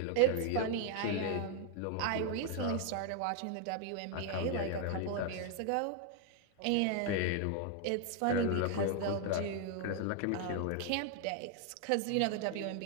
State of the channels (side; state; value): both; different; correlation 0.00